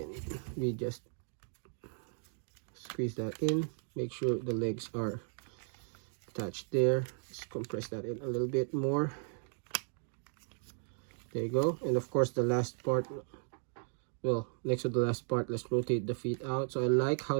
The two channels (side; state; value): left; silent; 54 dB below the other